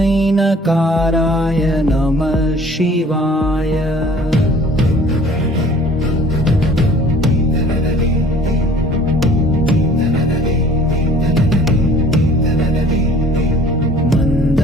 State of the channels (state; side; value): normal; both; correlation 0.52